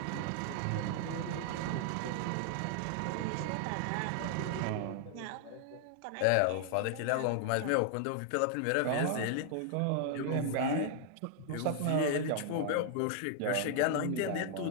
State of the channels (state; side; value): different; both; correlation 0.00